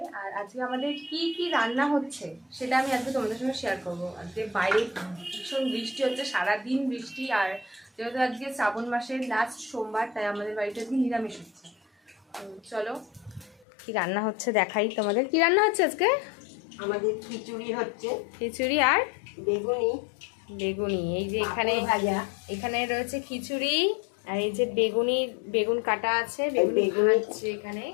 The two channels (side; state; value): right; drops out; at 13.7 s